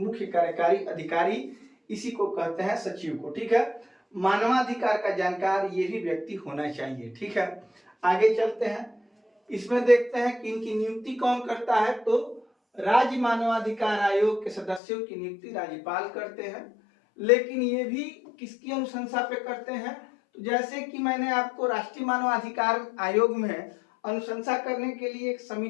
कार्यकारी अधिकारी, इसी को कहते हैं सचिव को, ठीक है। मानवाधिकार का जानकार ये भी व्यक्ति होना चाहिए, ठीक है। आगे चलते हैं, इसमें देखते हैं कि इनकी नियुक्ति कौन करता है। तो राज्य मानवाधिकार आयोग के सदस्यों की नियुक्ति राज्यपाल करते हैं, लेकिन ये भी किसकी अनुशंसा पे करते हैं, तो जैसे कि मैंने आपको राष्ट्रीय मानवाधिकार आयोग में अनुशंसा करने के लिए एक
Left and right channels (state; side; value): drops out; right; at 14.8 s